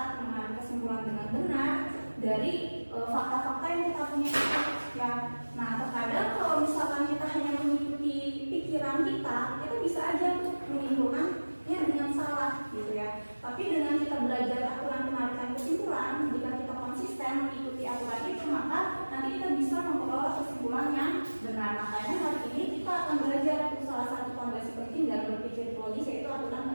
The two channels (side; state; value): both; inverted; correlation -1.00